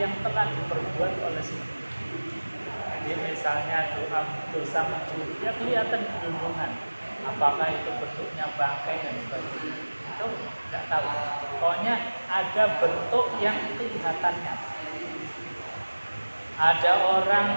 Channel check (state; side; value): inverted; both; correlation -1.00